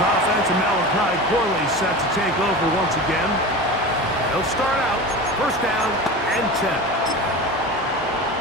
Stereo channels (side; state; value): both; normal; correlation 0.30